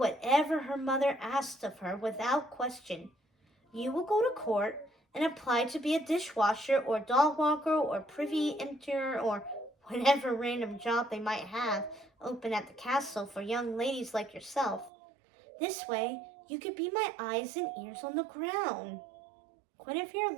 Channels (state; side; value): drops out; left; at 14.9 s